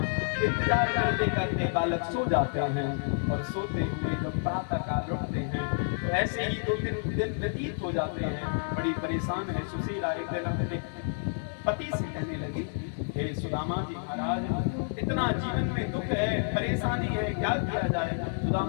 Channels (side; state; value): right; silent; digital silence